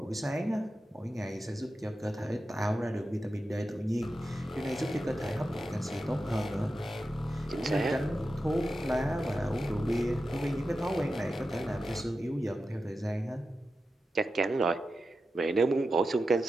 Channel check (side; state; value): both; normal; correlation 0.91